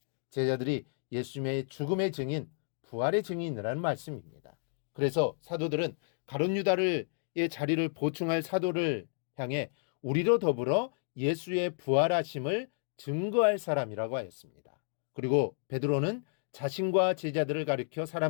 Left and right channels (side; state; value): right; silent; digital silence